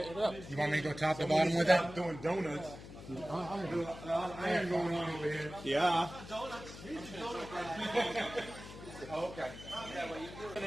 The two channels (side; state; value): left; noise; hum, 14 dB below the sound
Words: it up. You want me to go top to bottom with it? I'm doing donuts. Iron going on over here. Yeah. Okay. And